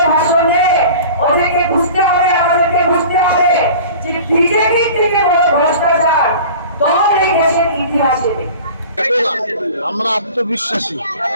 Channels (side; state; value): both; inverted; correlation -0.41